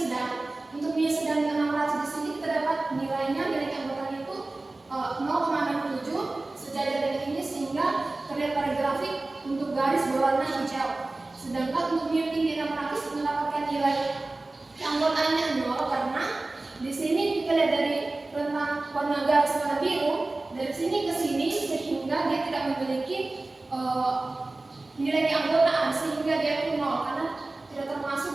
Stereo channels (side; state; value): left; quieter; 3.1 dB